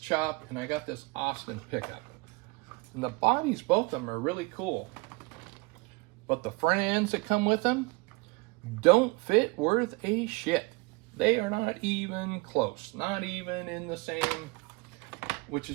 and I got this Austin pickup. And the bodies, both of them, are really cool. But the front ends that come with them don't fit worth a shit. They are not even close, not even in the same, which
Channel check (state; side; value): quieter; left; 27.0 dB